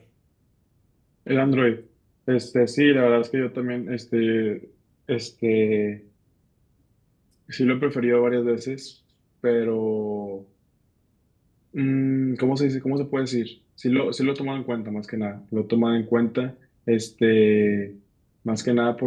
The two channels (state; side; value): identical; both; correlation 1.00